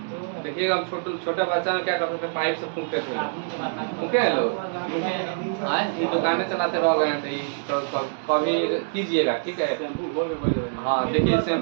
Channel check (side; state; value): left; silent; digital silence